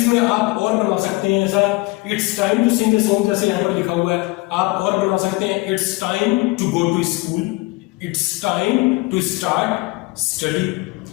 में आप और बना सकते हैं, ऐसा it's time to sing a song जैसे यहां पर लिखा हुआ है, आप और बना सकते हैं it's time to go to school, it's time to start study,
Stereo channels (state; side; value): quieter; right; 23.6 dB